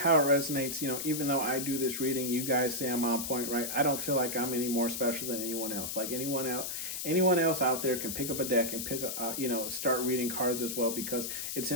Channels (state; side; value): noise; left; hiss, 4 dB below the sound